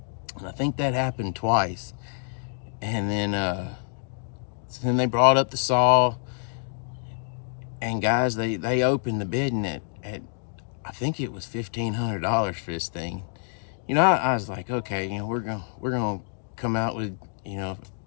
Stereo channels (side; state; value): right; silent; 60 dB below the other